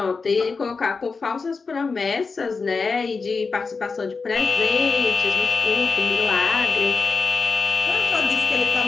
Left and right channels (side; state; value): right; quieter; 4.6 dB